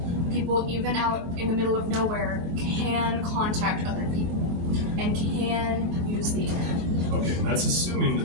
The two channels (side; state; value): left; late; 23 ms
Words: people, even out in the middle of nowhere, can contact other people and can use the internet. Okay, and that's assuming